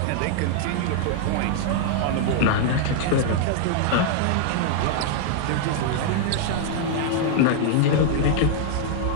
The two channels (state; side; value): different; both; correlation -0.01